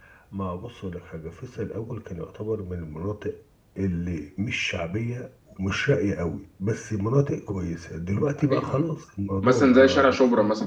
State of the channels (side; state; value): both; identical; correlation 1.00